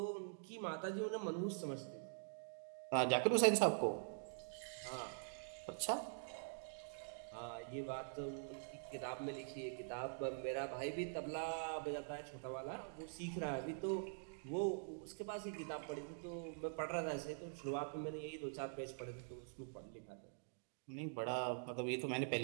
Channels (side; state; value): left; silent; digital silence